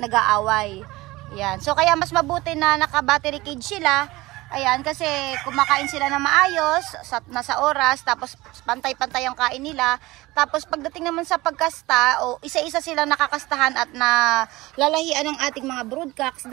Yan. So, kaya mas mabuti na naka-battery cage sila. Ayan, kasi kumakain sila na maayos, nasa oras, tapos pantay-pantay ang kain nila. Tapos pagdating naman sa pagkasta, isa-isa silang nakakastahan at nalalahian ng ating mga broodcocks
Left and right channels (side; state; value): left; quieter; 20.0 dB